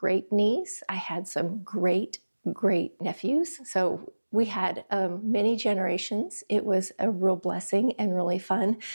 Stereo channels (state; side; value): inverted; both; correlation -1.00